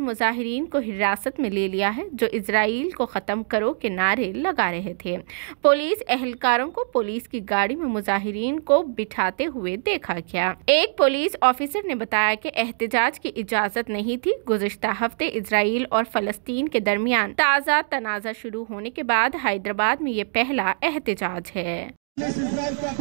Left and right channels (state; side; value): silent; left; digital silence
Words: मुजाहिरीन को हिरासत में ले लिया है जो इसराइल को खत्म करो के नारे लगा रहे थे। पुलिस एहलकारों को पुलिस की गाड़ी में मुजाहिरीन को बिठाते हुए देखा गया। एक पुलिस ऑफिसर ने बताया कि एहतजाज की इजाजत नहीं थी। गुज़िश्ता हफ्ते इसराइल और फ़लस्तीन के दरमियान ताज़ा तनाज़ा शुरू होने के बाद हैदराबाद में ये पहला एहतजाज है।